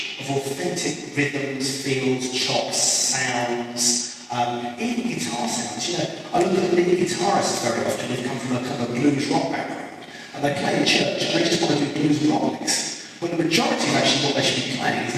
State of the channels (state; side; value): identical; both; correlation 1.00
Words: of authentic rhythms, feels, chops, sounds, even guitar sounds. I look at lead guitarists very often who come from a kind of blues rock background, and they play in church and they just want to do blues and rock licks. But the majority of actually what they should be playing is